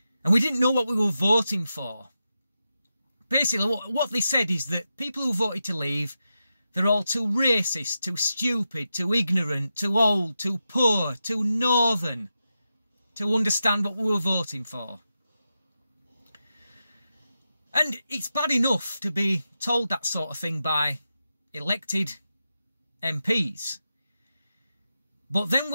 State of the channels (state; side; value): inverted; both; correlation -0.89